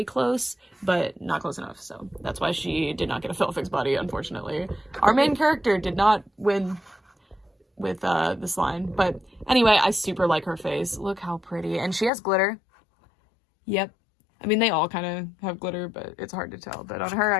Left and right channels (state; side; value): drops out; right; at 12.1 s